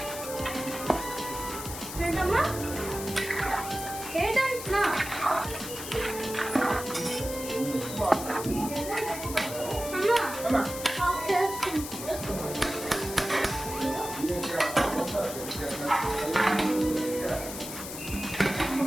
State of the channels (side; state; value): left; noise; hiss, 9 dB below the sound